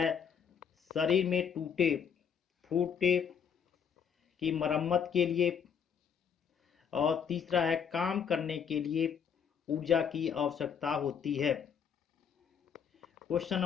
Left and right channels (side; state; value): right; quieter; 7.3 dB